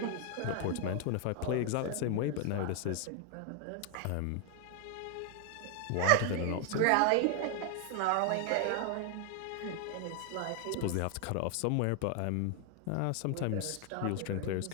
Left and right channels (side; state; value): both; different; correlation 0.00